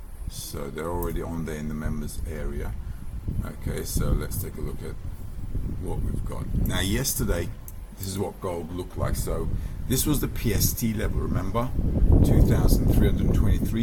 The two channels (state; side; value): identical; both; correlation 1.00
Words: so they're already on there in the members area. Okay, so let's take a look at what we've got. Now yesterday, this is what gold looked like. So this was the PST level, remember?